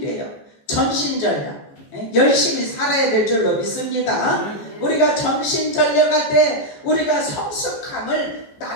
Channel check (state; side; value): late; right; 15 ms